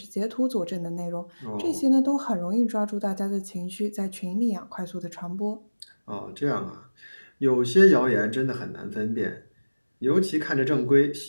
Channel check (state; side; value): inverted; both; correlation -1.00